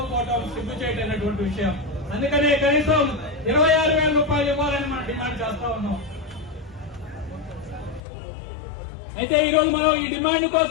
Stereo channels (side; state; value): right; drops out; at 8.0 s